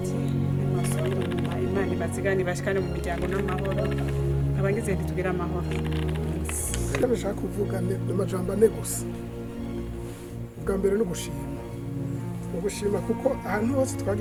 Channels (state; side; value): identical; both; correlation 1.00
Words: nimasubire inyuma imana ibazigane bashikane mu miryango n'amahoro abagize ntitugira amahoro icyo bashaka kuvuga ni amajambo ane gusa ubwa mbere ni ugushima kuko ahantu hose